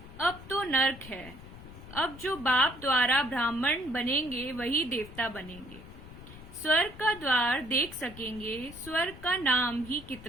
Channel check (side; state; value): left; noise; rumble, 16 dB below the sound